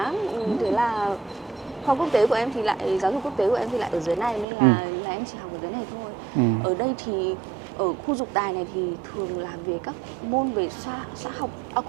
thế là khoa quốc tế của em thì lại, giáo dục quốc tế của em thì lại ở dưới này, nên là em chỉ học ở dưới này thôi. Ở đây thì ở khu Dục Tài này thì thường là về các môn về khoa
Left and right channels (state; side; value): drops out; left; at 4.5 s